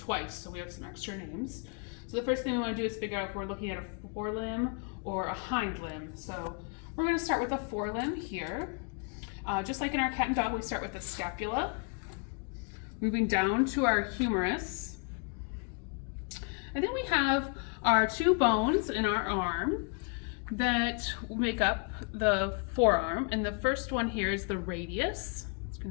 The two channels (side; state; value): right; quieter; 38.6 dB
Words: so we have some extra names. So the first thing we want to do is figure out if we're looking at a forelimb or a hind limb. So we're going to start with a forelimb here. Just like in our cat and dog, we start with the scapula, moving down to our humerus. And then we have our two bones in our arm that make up the forearm. And the first one here is the radius. It's going